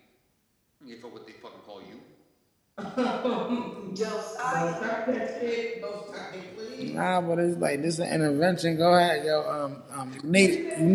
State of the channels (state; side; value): identical; both; correlation 1.00